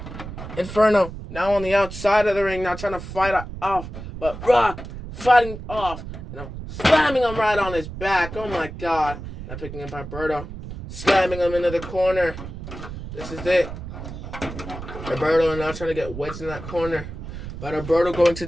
Inferno now on the outside of the ring. Now trying to fight off. But Rock fighting off. Slamming him right on his back. Oh my god. Now picking up Alberto. Slamming him into the corner. This is it. Alberto now trying to get wedged in that corner. But Alberto going to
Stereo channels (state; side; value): noise; right; rumble, 10 dB below the sound